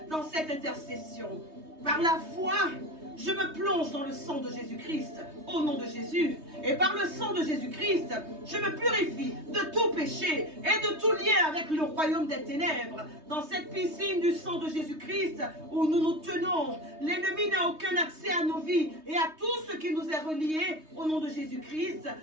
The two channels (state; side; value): late; left; 3.2 ms